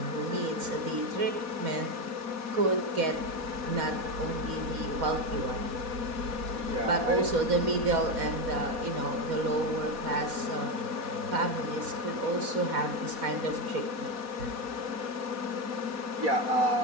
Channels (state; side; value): late; left; 4.1 ms